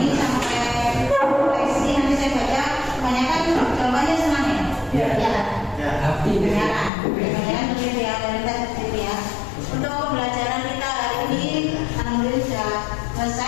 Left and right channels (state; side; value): drops out; right; at 6.9 s